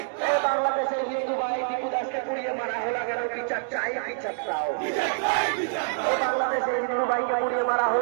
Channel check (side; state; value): left; silent; digital silence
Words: বাংলাদেশের হিন্দু ভাই টিপু দাসকে পুড়িয়ে মারা হলো কেন? বিচার চাই, বিচার চাও। বাংলাদেশের হিন্দু ভাইকে পুড়িয়ে মারা